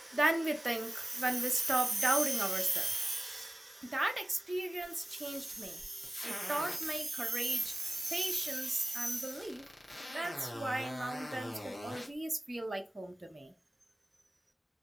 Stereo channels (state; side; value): normal; both; correlation 0.97